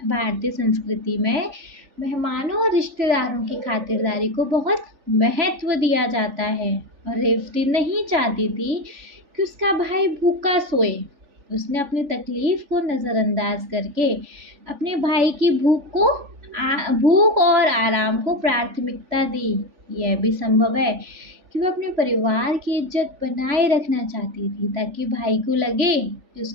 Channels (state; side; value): late; left; 3.5 ms